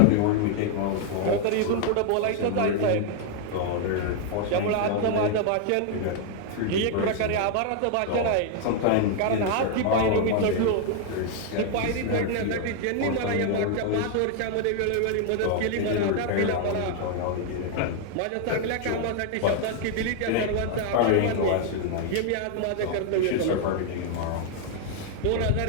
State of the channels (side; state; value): both; different; correlation 0.00